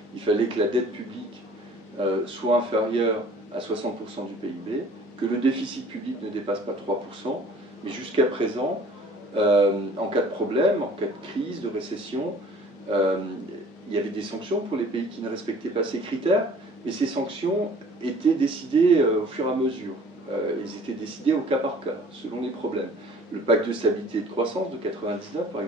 Il fallait que la dette publique soit inférieure à 60% du PIB, que le déficit public ne dépasse pas 3%, mais jusqu'à présent, en cas de problème, en cas de crise, de récession, il y avait des sanctions pour les pays qui ne respectaient pas ces critères, mais ces sanctions étaient décidées au fur et à mesure. Elles étaient décidées au cas par cas, selon les problèmes. Le pacte de stabilité et de croissance de 1999, par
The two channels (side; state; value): both; normal; correlation 0.51